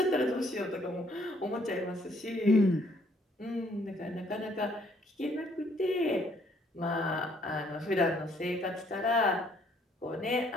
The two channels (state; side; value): normal; both; correlation 0.65